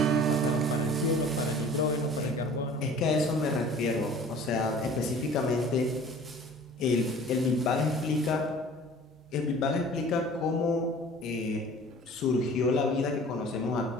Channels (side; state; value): both; normal; correlation 0.46